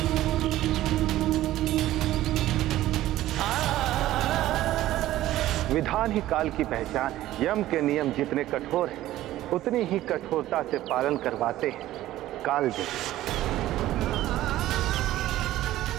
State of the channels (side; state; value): left; quieter; 14.7 dB